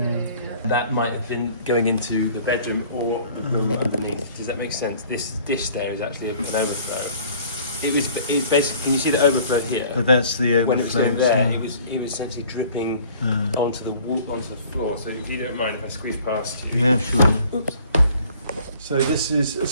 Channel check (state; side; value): inverted; both; correlation -0.52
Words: That might have been going into the bedroom or the room underneath. Does that make sense? This dish there is actually an overflow. It basically. Can you see the overflow here? But that's the When it was going overflow, there, so- it was essentially dripping onto the wall, onto the floor. So if you don't mind if I squeeze past you. Yeah, sure. Oops.